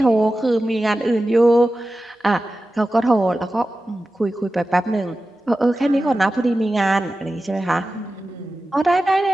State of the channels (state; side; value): normal; both; correlation 0.94